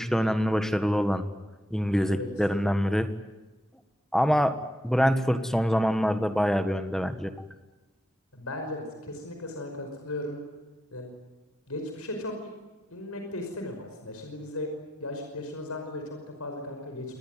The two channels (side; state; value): both; normal; correlation 0.86